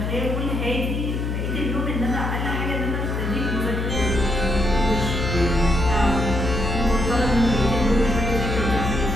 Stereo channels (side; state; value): left; noise; hum, 2 dB below the sound